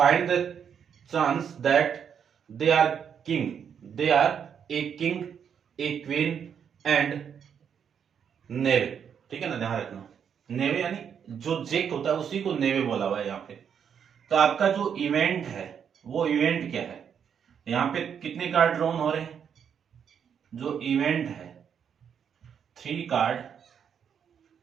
the chance that they are king. They are a king, a queen and नेवे, ठीक है ना, ध्यान रखना। नेवे यानी जो जेक होता है उसी को नेवे बोला हुआ है यहाँ पे। तो आपका जो इवेंट है वो इवेंट क्या है? यहाँ पे कितने कार्ड ड्रॉन हो रहे हैं? जो इवेंट है 3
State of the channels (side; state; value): left; quieter; 7.7 dB